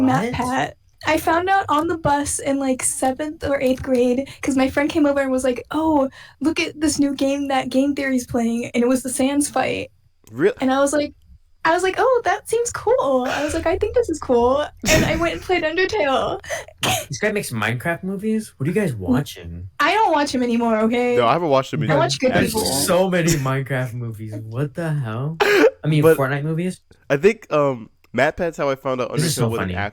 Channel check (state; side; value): identical; both; correlation 1.00